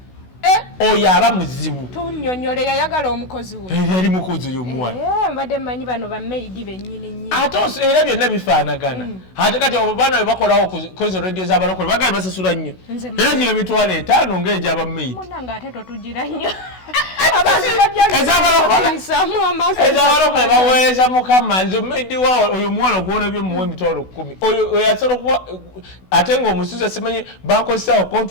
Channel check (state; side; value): late; right; 16 ms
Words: oyo aba muzibu tunyonyole yayagala omukozi we yali mukozi oyo omuwala mbadde mmanyi bano bamaidi bennyini ate era byonna bifaanagana ate kati abo baana bebakolawo kozo radio z'abalokole bagali basasula nnyo era gino emitwalo 5 ng'egy'abamaidi munanga ate totugira nnyo ezabalokole baweereza mukama nze omumaidi wa oyo omuwala ogwona byomuwa emitwalo 10 oyo asobola okuba ate ng'omusuza simanyi bankozesaawo